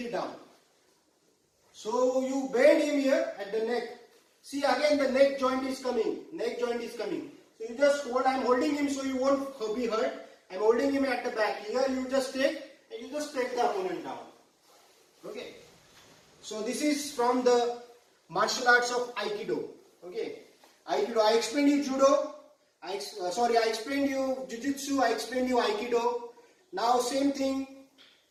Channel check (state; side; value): identical; both; correlation 1.00